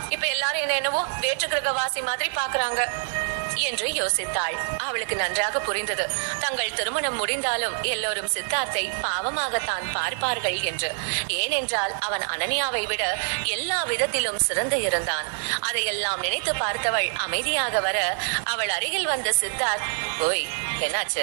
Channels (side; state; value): left; silent; 61 dB below the other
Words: இப்ப எல்லாரும் என்ன என்னவோ வேற்று கிரகவாசி மாதிரி பாக்குறாங்க என்று யோசித்தாள். அவளுக்கு நன்றாக புரிந்தது, தங்கள் திருமணம் முடிந்தாலும் எல்லோரும் சித்தார்த்தை பாவமாகத்தான் பார்ப்பார்கள் என்று. ஏனென்றால் அவன் அனன்யாவை விட எல்லா விதத்திலும் சிறந்து இருந்தான். அதையெல்லாம் நினைத்து பார்த்தவள் அமைதியாக வர அவள் அருகில் வந்த சித்தார்த், ஓய்